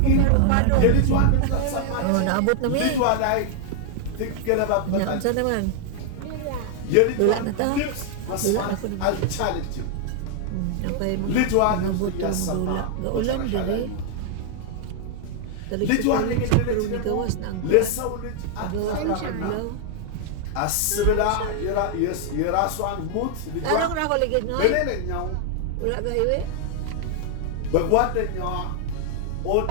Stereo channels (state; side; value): different; both; correlation 0.00